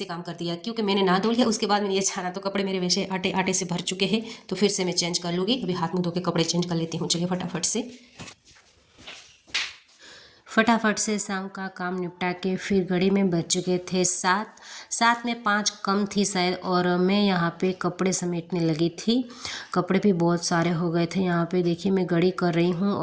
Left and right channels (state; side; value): identical; both; correlation 1.00